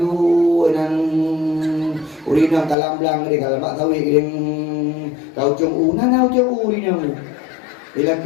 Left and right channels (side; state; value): right; drops out; at 2.8 s